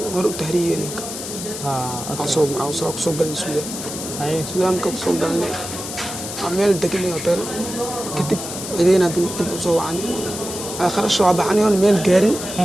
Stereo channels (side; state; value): left; noise; hiss, 8 dB below the sound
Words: war u tahriibeen soo galay Suudaan Suudaan ka soo galnay ameel degnay hotel kadib ciidina dib u soo wacani kharash waa baxani oo meel gaarin